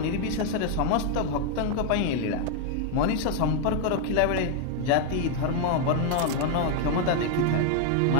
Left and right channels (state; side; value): different; both; correlation 0.00